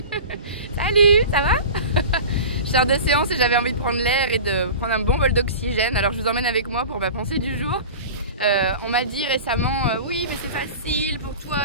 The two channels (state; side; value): inverted; both; correlation -0.34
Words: ça va? Je sors de séance et j'avais envie de prendre l'air et de prendre un bon bol d'oxygène. Alors je vous emmène avec moi pour ma pensée du jour. On m'a dit récemment, oui mais c'est facile pour